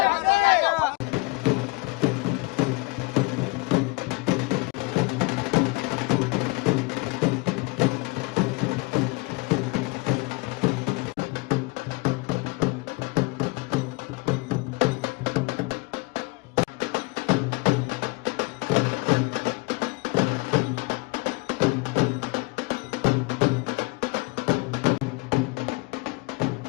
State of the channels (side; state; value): right; quieter; 26.3 dB